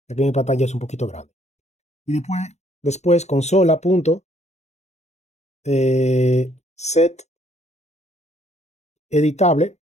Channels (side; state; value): right; late; 0.32 ms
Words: Aquí mi pantalla es un poquito grande. Y después consola punto set editable.